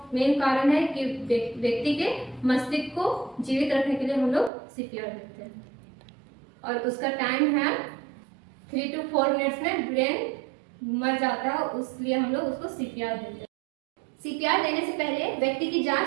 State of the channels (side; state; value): left; drops out; at 4.5 s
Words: मेन कारण है कि व्यक्ति के मस्तिष्क को जीवित रखने के लिए हम लोग सीपीआर देते हैं और उसका टाइम है 3 to 4 मिनट्स में ब्रेन मर जाता है, इसलिए हम लोग उसको सीपीआर देते हैं। सीपीआर देने से पहले व्यक्ति की